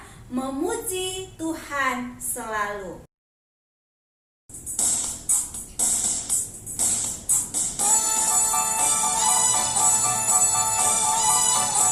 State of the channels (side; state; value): both; identical; correlation 1.00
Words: memuji Tuhan selalu.